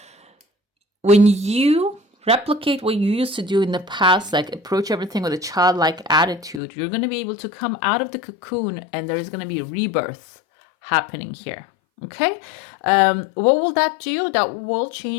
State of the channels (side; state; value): right; drops out; at 6.6 s